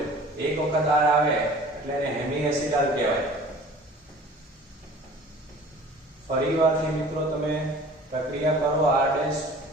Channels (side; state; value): both; normal; correlation 0.46